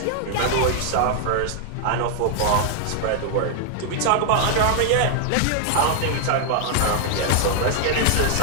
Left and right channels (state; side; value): different; both; correlation 0.00